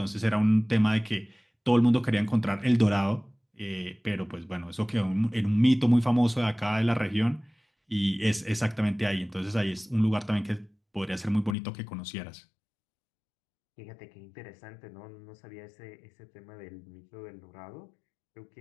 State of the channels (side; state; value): right; drops out; at 11.6 s